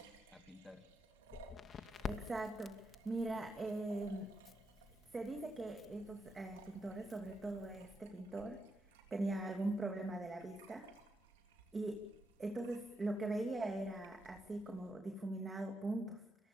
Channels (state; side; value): normal; both; correlation 0.83